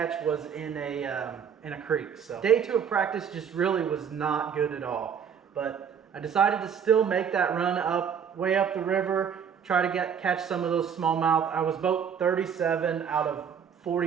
was in a creek. So day two of practice just really was not good at all, but I decided to still make that run way up the river, try to catch some of those smallmouth. I was boat 37 out of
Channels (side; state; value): left; quieter; 7.5 dB